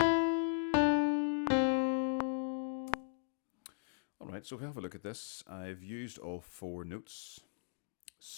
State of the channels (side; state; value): right; silent; digital silence